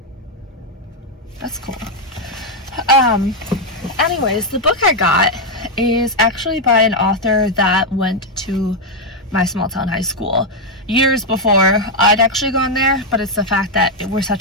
That's cool. Anyways, the book I got is actually by an author that went to my small town high school years before I'd actually gone there, but it's the fact that we're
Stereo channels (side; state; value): both; normal; correlation 0.01